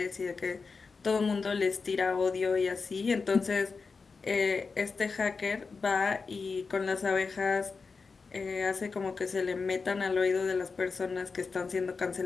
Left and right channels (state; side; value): quieter; right; 4.7 dB